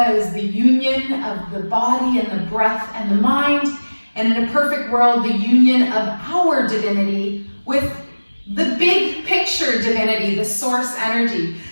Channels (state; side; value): inverted; both; correlation -1.00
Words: is the union of the body and the breath and the mind. And in a perfect world, the union of our divinity with the big picture divinity, the source energy.